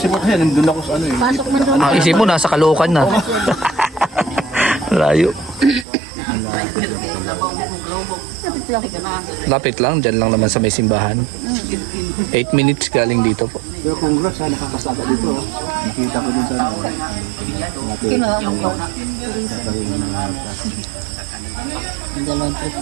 po kasi nandun ako sa ano eh. Pasok man doon. Ang isip mo, nasa Caloocan na. Layo. Lapit lang, dyan lang naman sa may simbahan. 8 minutes galing dito po. Pero congrats ha, nakapasaka dito. Oh. Nakita ko dun sa ano. Kinuha ko. Nakarin ng bata. Ang dalang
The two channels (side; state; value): left; drops out; at 5.9 s